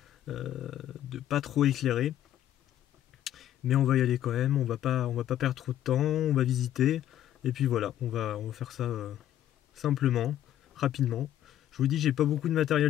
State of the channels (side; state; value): right; quieter; 11.9 dB